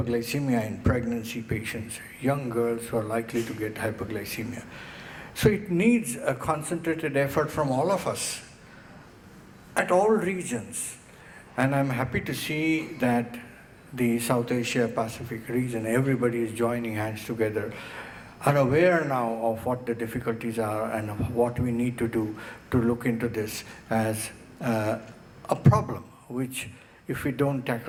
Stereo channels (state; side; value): identical; both; correlation 1.00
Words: in pregnancy patients, young girls who are likely to get hyperglycemia. So it needs a concentrated effort from all of us at all regions. And I'm happy to see that the South Asia Pacific region, everybody is joining hands together, are aware now of what the difficulties are and what we need to do to look into this as a problem, which if we don't